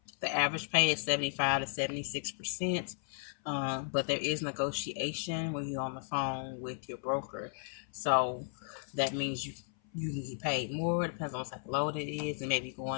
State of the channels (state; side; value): silent; right; 55 dB below the other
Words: The average pay is 75 to 76%. But there is negotiation when you're on the phone with your broker. So that means you can get paid more. It depends on what type of load it is. And maybe